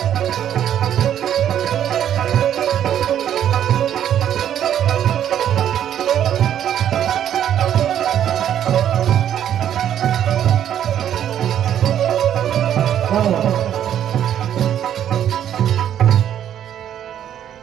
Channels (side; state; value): left; quieter; 10.3 dB